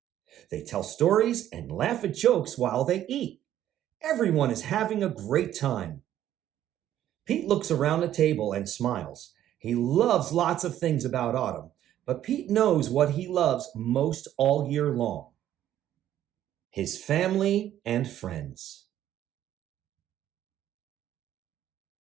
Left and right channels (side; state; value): left; quieter; 11.8 dB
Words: They tell stories and laugh at jokes while they eat. Everyone is having a great time. Pete looks around the table and smiles. He loves lots of things about autumn, but Pete knows what he loves most all year long. his family and friends.